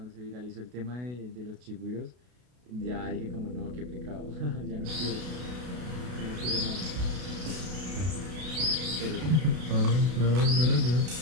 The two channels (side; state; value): left; late; 32 ms